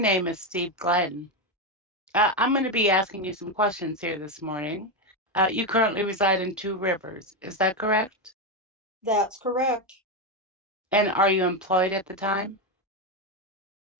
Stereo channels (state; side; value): normal; both; correlation 0.09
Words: is Steve Glenn. I'm going to be asking you some questions here this morning. You currently reside in Two Rivers, is that correct? That's correct. And are you employed at the time?